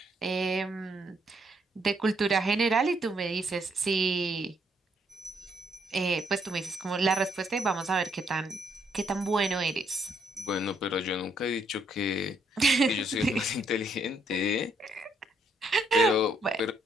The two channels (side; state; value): both; normal; correlation 0.72